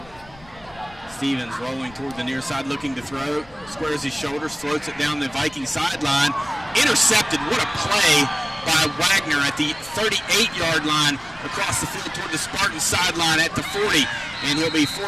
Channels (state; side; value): noise; left; rumble, 23 dB below the sound